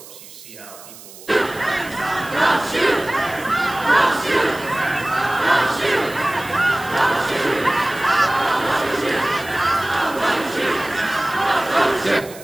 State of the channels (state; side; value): noise; right; hiss, 18 dB below the sound